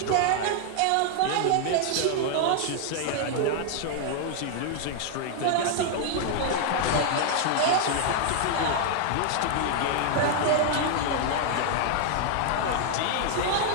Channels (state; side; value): different; both; correlation 0.00